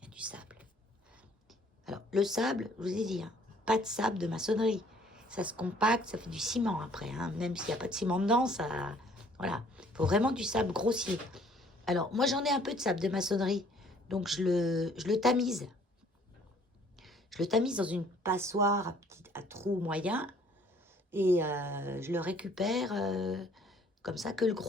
y a du sable. Alors, le sable, je vous ai dit, hein, pas de sable de maçonnerie. Ça se compacte, ça fait du ciment après. Hein. Même s'il n'y a pas de ciment dedans, ça... Voilà. Il faut vraiment du sable grossier. Alors, moi, j'en ai un peu de sable de maçonnerie. Donc, je le tamise. Je le tamise dans une passoire à trou moyen. Et je le récupère comme ça que le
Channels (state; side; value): normal; both; correlation 0.59